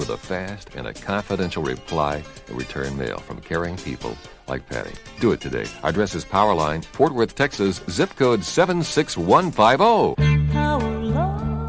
a fast and a confidential reply and return mail from caring people like Patty. Do it today. Our address is Powerline, Fort Worth, Texas, zip code 76150.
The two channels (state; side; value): identical; both; correlation 1.00